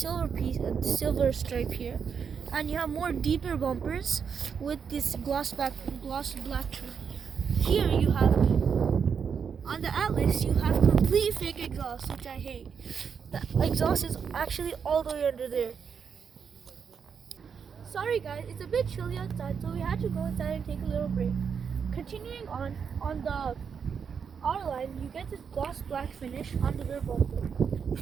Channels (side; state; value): left; quieter; 6.7 dB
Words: stripe here. And you have more deeper bumpers with this gloss black trim. Here you have, on the Atlas, you have complete fake exhaust, which I hate. The exhaust is actually all the way under there. Sorry guys, it's a bit chilly outside, so we had to go inside and take a little break. Continuing on the R-Line, you get this gloss black finish on the rear bumper.